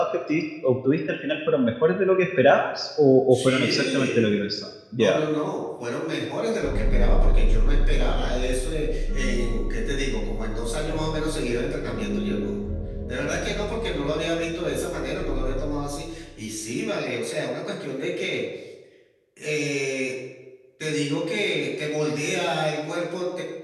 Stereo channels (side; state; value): both; identical; correlation 1.00